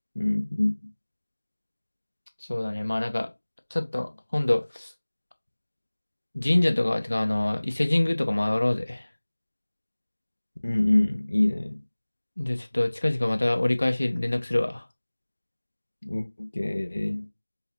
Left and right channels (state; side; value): inverted; both; correlation -1.00